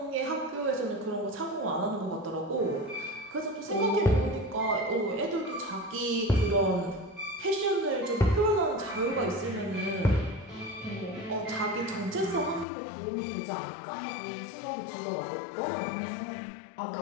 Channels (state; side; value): drops out; right; at 12.7 s